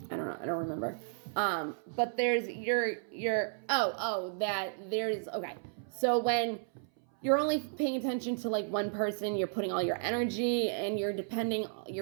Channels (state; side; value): silent; left; 56 dB below the other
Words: I don't know. I don't remember. But there's okay. So when you're only paying attention to like one person, you're putting all your energy and you're